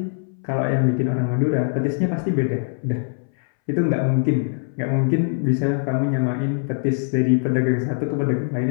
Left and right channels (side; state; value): right; silent; 64 dB below the other